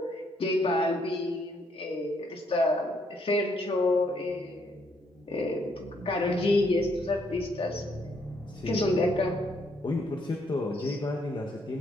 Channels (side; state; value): both; normal; correlation 0.71